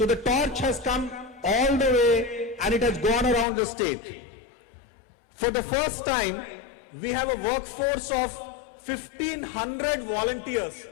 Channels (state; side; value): drops out; right; at 3.5 s